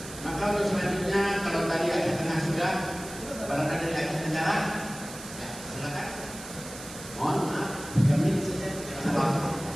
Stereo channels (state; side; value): noise; right; hiss, 13 dB below the sound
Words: Maka untuk selanjutnya, kalau tadi Aceh Tengah sudah, barangkali dari Aceh Tenggara, ya silakan. Mohon maaf, 3 menit saja.